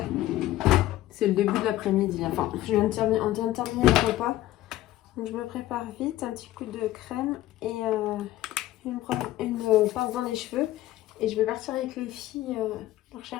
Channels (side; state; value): right; quieter; 14.9 dB